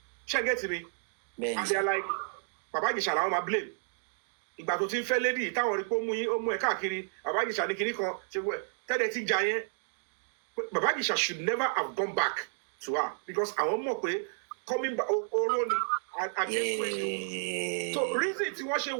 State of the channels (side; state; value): left; silent; digital silence